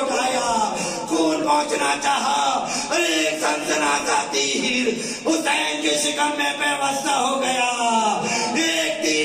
خون پہنچنا چاہا. ایک سنسناتا تیر حسین کے شکم میں پیوستہ ہو گیا. ایک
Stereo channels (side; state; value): both; identical; correlation 1.00